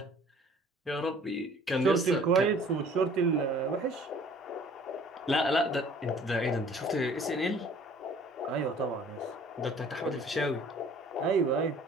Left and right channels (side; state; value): both; normal; correlation 0.52